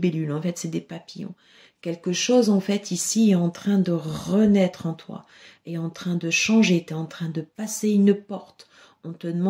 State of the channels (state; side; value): identical; both; correlation 1.00